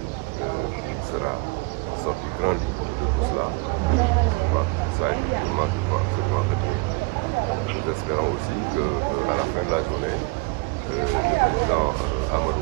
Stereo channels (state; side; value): quieter; left; 26.6 dB